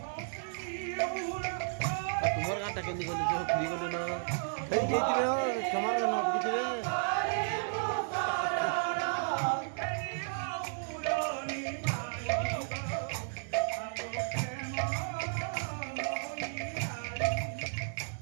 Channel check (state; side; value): silent; left; digital silence